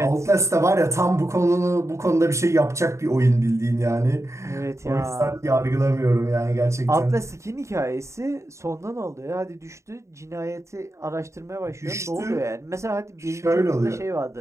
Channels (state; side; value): late; left; 0.14 ms